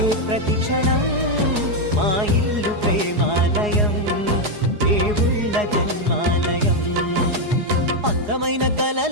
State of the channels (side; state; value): left; late; 4.8 ms